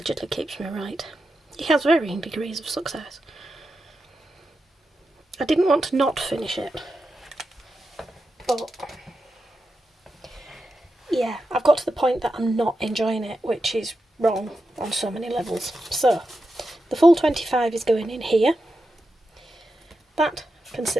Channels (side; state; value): both; normal; correlation 0.89